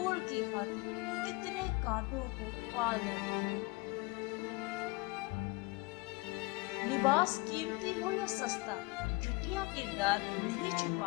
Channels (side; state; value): right; quieter; 25.1 dB